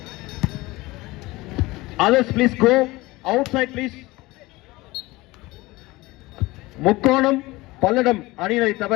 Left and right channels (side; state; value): right; quieter; 20.7 dB